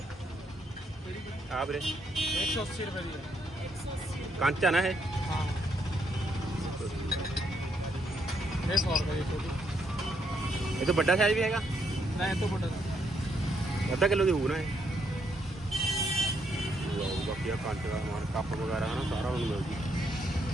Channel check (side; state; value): both; normal; correlation 0.75